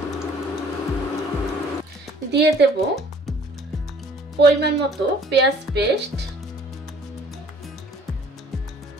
দিয়ে দেব পরিমাণ মতো পেঁয়াজ পেস্ট,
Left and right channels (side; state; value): both; normal; correlation 0.55